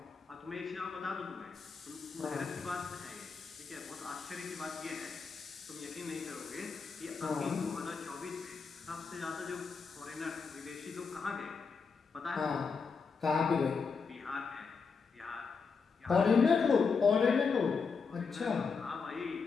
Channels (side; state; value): right; quieter; 5.2 dB